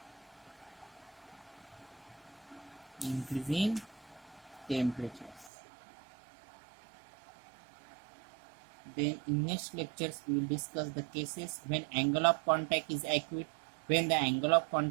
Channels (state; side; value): drops out; left; at 5.5 s